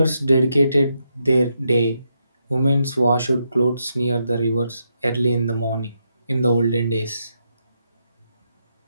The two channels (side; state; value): both; inverted; correlation -0.81